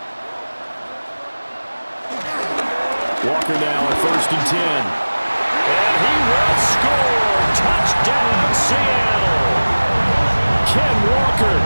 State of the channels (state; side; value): inverted; both; correlation -1.00